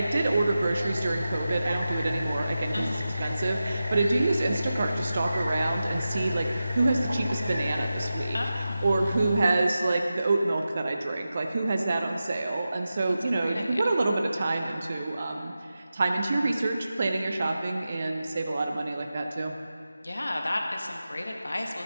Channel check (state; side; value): inverted; both; correlation -0.92